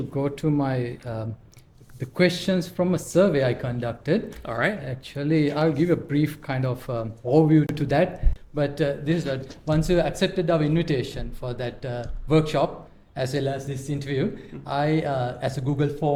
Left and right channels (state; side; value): identical; both; correlation 1.00